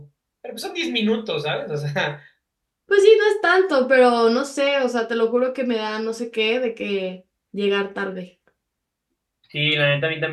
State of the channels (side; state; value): both; identical; correlation 1.00